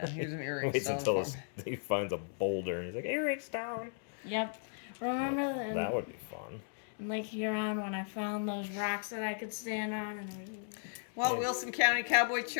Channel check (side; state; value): right; silent; 54 dB below the other